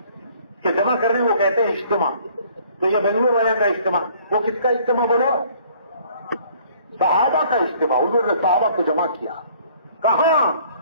کہ جمع کرنے کو کہتے ہیں اجتماع. تو یہ بنگلور والے کا اجتماع، وہ کس کا اجتماع بولو؟ صحابہ کا اجتماع. حضور نے صحابہ کو جمع کیا. کہاں؟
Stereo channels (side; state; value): both; inverted; correlation -0.58